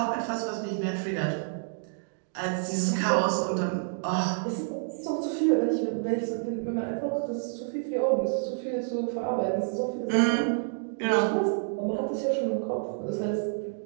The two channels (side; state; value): left; silent; digital silence